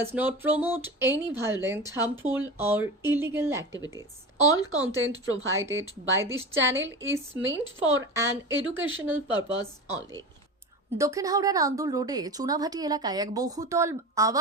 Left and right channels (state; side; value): normal; both; correlation 0.29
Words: not promote any violent, harmful, or illegal activities. All content provided by this channel is meant for an educational purpose only. দক্ষিণ হাওড়ার আন্দুল রোডে চুনাভাটি এলাকায় এক বহুতল